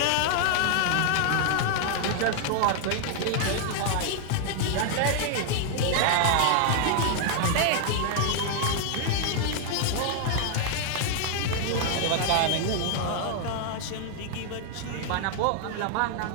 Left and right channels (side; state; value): both; different; correlation 0.00